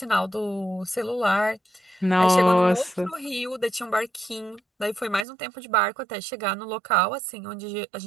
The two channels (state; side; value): drops out; left; at 5.2 s